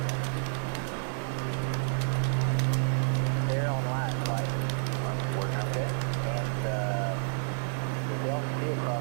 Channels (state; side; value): silent; left; 58 dB below the other